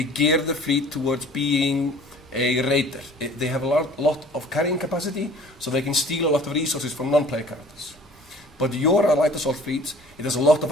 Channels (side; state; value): both; normal; correlation 0.49